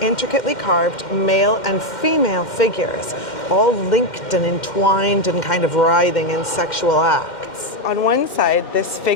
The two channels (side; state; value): right; late; 2.1 ms